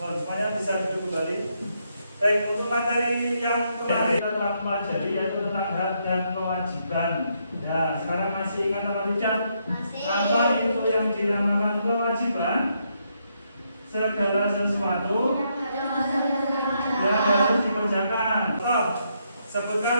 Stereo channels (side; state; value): both; inverted; correlation -0.77